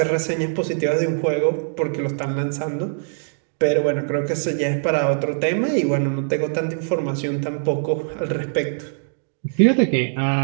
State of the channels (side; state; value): left; silent; digital silence